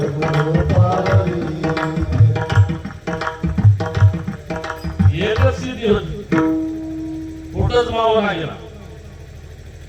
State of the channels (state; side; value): identical; both; correlation 1.00